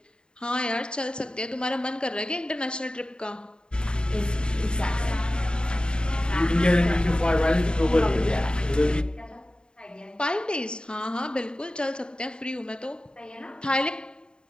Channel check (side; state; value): right; late; 0.050 ms